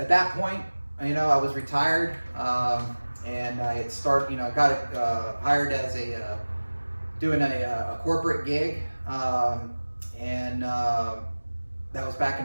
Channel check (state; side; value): inverted; both; correlation -1.00